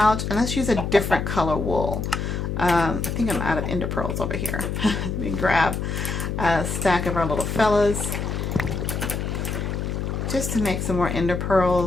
and let's use a different color wool. I think I'm out of ender pearls over here. Let me grab a stack of our little fellas just to make some more ender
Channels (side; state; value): left; noise; hum, 3 dB below the sound